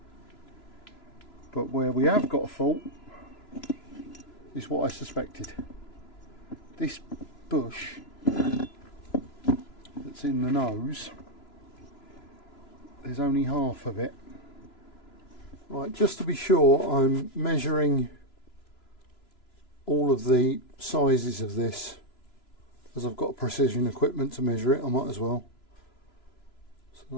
but where we have got a fault is what I suspected. This bush that's in the nose, there's only half of it. Right, just to be sure, I'm measuring all of the sizes of this, as I've got precision equipment to measure it. I might as well. So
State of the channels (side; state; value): right; late; 3.0 ms